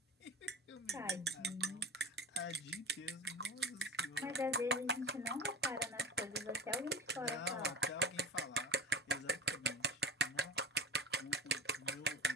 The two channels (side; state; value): both; normal; correlation 0.33